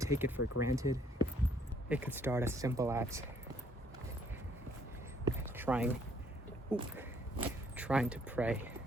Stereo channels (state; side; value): normal; both; correlation 0.65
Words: take it for granted. It could start as simple as trying to pray